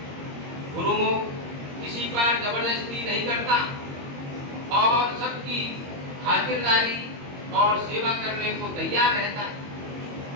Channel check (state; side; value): late; left; 22 ms